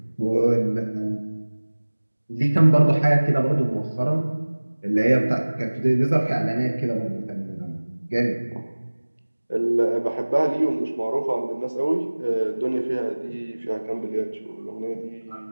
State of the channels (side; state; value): both; inverted; correlation -1.00